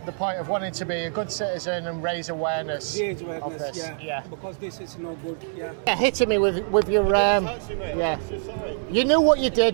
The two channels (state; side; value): silent; left; 62 dB below the other